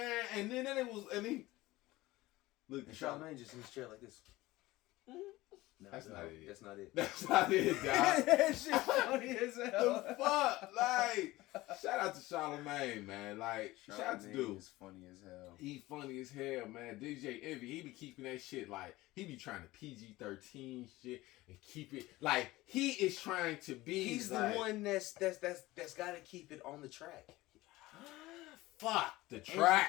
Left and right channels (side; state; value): right; quieter; 18.6 dB